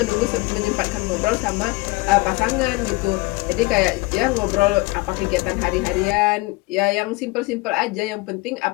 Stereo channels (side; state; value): right; quieter; 23.1 dB